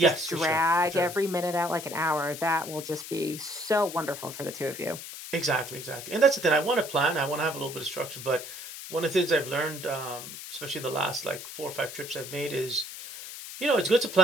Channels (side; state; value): left; noise; hiss, 11 dB below the sound